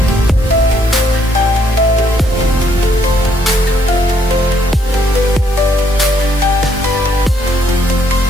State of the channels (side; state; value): both; normal; correlation 0.70